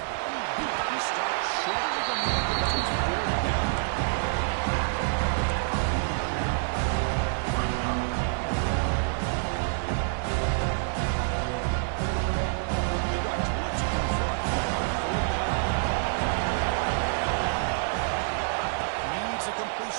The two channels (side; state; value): left; silent; 60 dB below the other